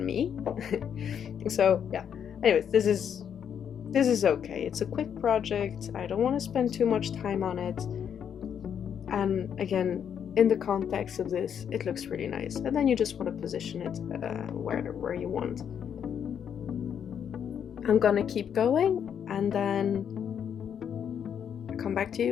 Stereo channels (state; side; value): quieter; right; 8.3 dB